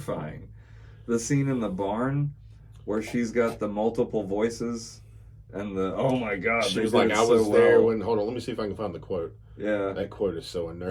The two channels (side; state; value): both; identical; correlation 1.00